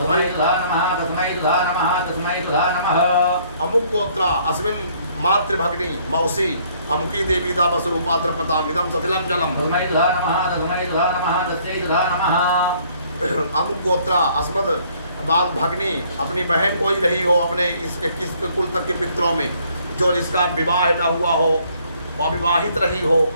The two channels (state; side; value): inverted; both; correlation -0.63